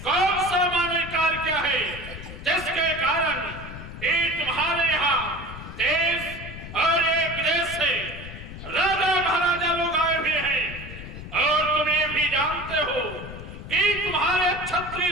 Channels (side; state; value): left; noise; rumble, 12 dB below the sound